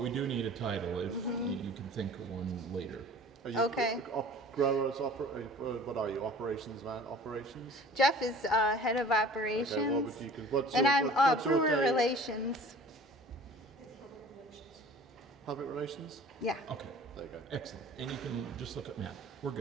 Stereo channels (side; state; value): both; normal; correlation 0.46